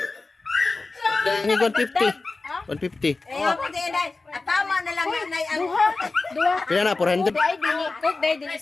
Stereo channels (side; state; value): right; quieter; 3.6 dB